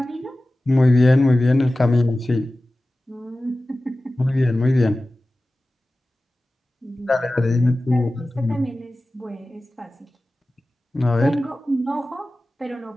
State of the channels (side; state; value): both; normal; correlation 0.96